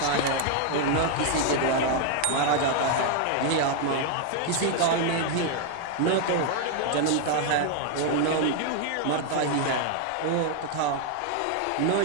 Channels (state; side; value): different; both; correlation 0.00